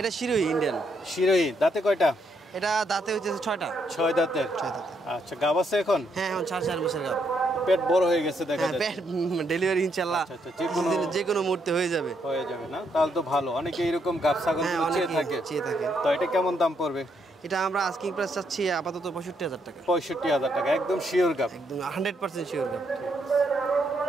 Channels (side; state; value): both; normal; correlation 0.75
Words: এটা শিরোহী, ইন্ডিয়ান শিরোহী। দাঁতে কয়টা? এটা দাঁতে হইতেছে 6টা। 6 দাঁতের? 6 দাঁতে। আচ্ছা, গাব আছে এখন? হ্যাঁ, এখন 4 মাসের গাব। পেট বড় হয়ে গেছে দেখা হ্যাঁ, যাচ্ছে। ডেলিভারি ইনশাআল্লাহ যে কোনো মুহূর্তে হয়ে যাবে। না? তাহলে তো ভালো। অনেকে এরকম গাব ছাগল চেয়ে থাকে। তো এটা কেমন দাম পড়বে? এটা আমরা আস্কিং প্রাইস চাচ্ছি আপাতত 65,000 টাকা। 65,000 টাকা, একদম শিওর গাব? একদম 100% শিওর গাব।